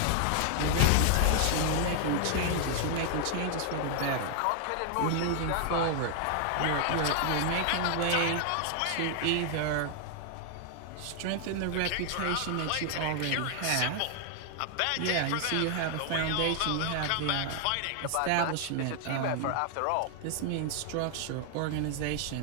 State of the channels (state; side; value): different; both; correlation 0.00